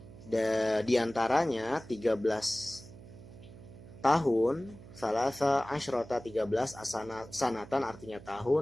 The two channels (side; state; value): right; noise; hum, 18 dB below the sound